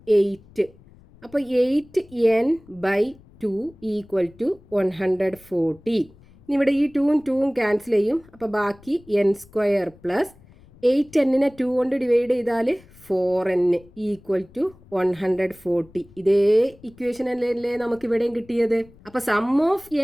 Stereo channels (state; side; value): noise; left; rumble, 26 dB below the sound